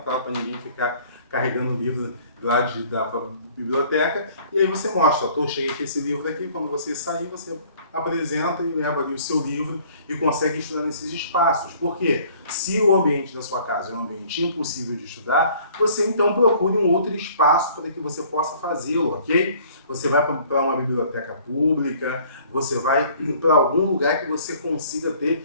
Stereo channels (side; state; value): both; inverted; correlation -0.55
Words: para ninguém ficar carregando o livro lá da biblioteca, e aí você mostra, cheguei com esse livro aqui, quando você sair, você apresenta e leva ali o seu livro e consegue estudar nesses espaços. Por quê? Se o ambiente da sua casa é um ambiente impossível de estudar, você então procure um outro espaço para que você possa fazê-lo, ok? Você vai para uma biblioteca pública, você vai para algum lugar que você consiga